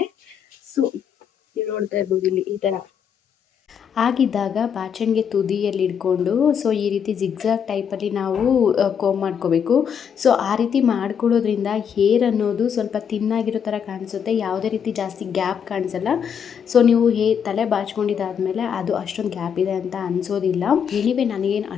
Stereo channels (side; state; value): right; quieter; 7.7 dB